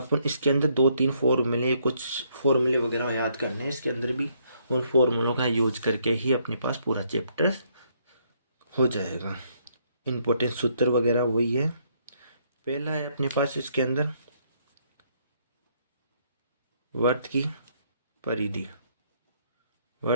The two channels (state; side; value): inverted; both; correlation -0.70